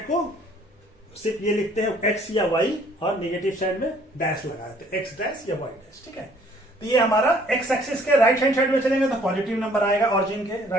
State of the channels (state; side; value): normal; both; correlation 0.59